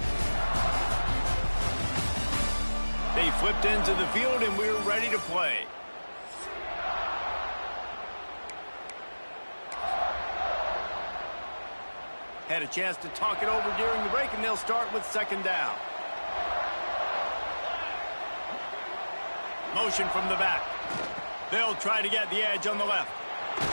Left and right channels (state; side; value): inverted; both; correlation -1.00